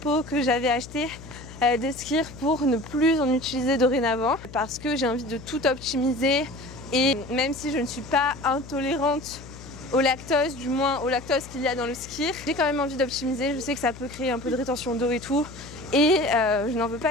que j'avais achetés de skir pour ne plus en utiliser dorénavant parce que j'ai envie de tout optimiser. Et même si je ne suis pas intolérante au lactose, du moins au lactose qu'il y a dans le skir, j'ai quand même envie d'optimiser. Je sais que ça peut créer un peu de rétention d'eau et tout. Et je n'en veux pas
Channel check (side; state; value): left; noise; hum, 16 dB below the sound